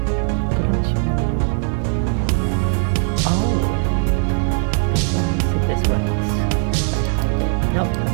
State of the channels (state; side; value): silent; left; 56 dB below the other